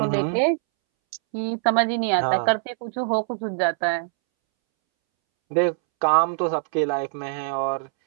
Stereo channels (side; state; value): left; silent; 63 dB below the other